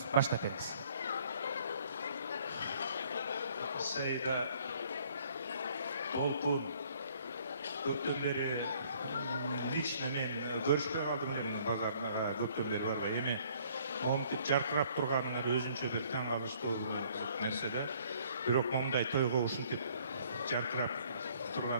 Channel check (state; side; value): inverted; both; correlation -0.60